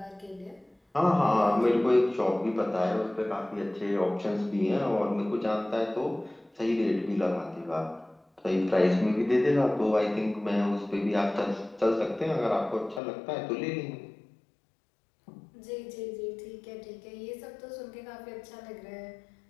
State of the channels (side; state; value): right; drops out; at 13.0 s